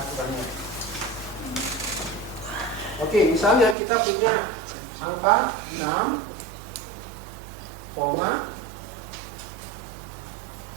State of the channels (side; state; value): left; drops out; at 3.8 s